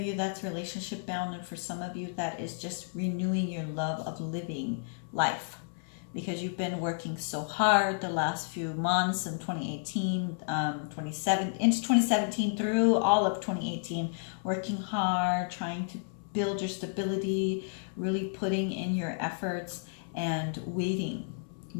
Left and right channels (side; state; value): right; silent; 57 dB below the other